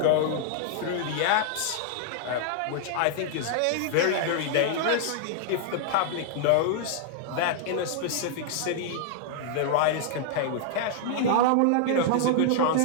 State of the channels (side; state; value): both; different; correlation -0.01